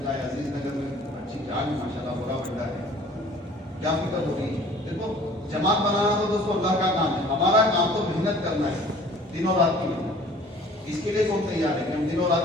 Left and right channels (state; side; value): normal; both; correlation 0.50